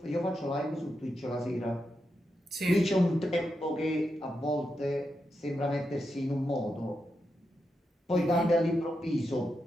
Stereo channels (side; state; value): both; normal; correlation 0.86